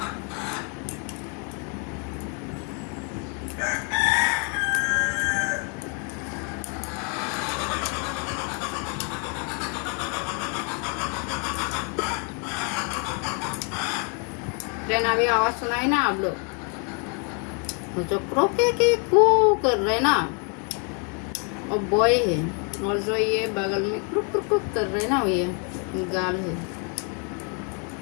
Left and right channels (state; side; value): quieter; right; 37.3 dB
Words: ट्रेन अभी आवाज सुनाई ना आप लोग, जो क्रोके के कू कर रहे ना और बॉय है, और जो ये बगल में क्रुक क्रुक क्रुक कर रहे ना ये गाल है।